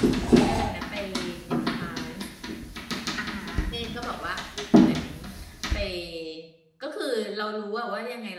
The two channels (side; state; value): both; identical; correlation 1.00